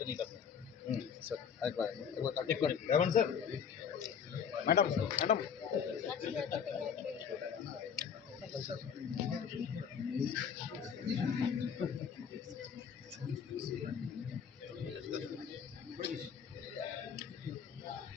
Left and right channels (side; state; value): right; quieter; 7.2 dB